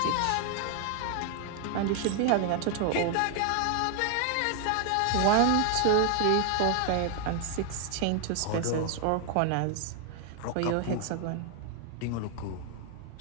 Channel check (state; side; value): different; both; correlation 0.00